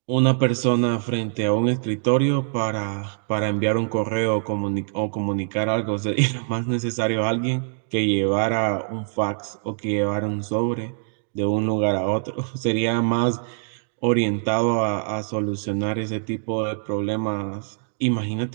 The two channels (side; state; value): left; silent; digital silence